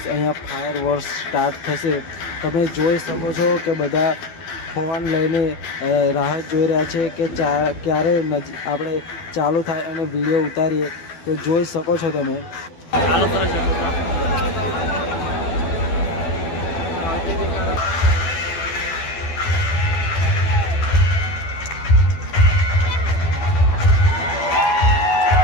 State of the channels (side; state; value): right; late; 12 ms